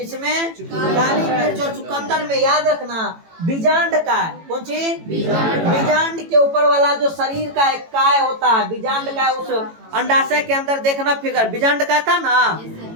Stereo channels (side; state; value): left; late; 18 ms